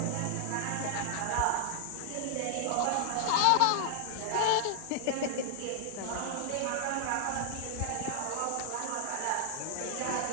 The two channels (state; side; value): different; both; correlation 0.00